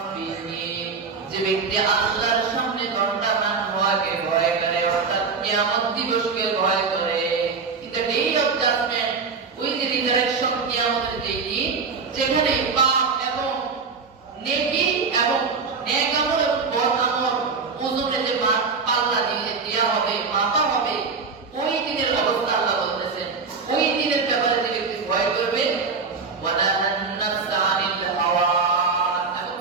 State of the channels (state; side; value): quieter; left; 4.9 dB